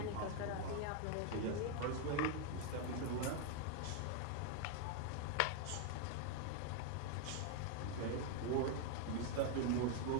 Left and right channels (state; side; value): different; both; correlation 0.01